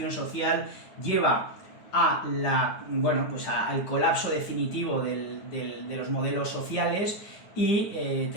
social, lleva a al colapso definitivo de los modelos sociales, y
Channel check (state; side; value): late; right; 9.5 ms